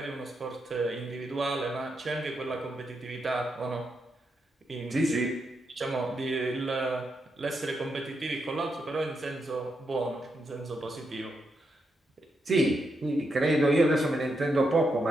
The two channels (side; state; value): both; normal; correlation 0.83